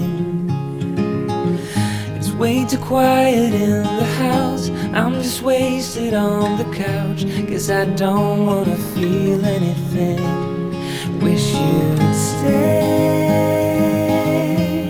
It's way too quiet in the house. I'm just wasted on the couch, 'cause I don't wanna feel anything. Wish you'd stay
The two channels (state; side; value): identical; both; correlation 1.00